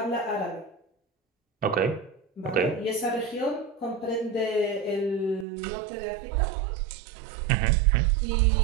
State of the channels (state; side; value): drops out; left; at 5.5 s